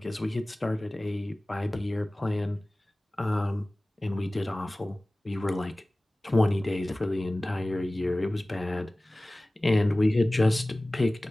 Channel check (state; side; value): normal; both; correlation 0.98